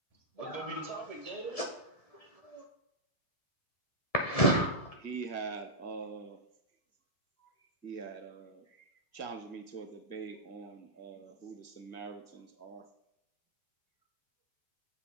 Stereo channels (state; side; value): late; right; 1.7 ms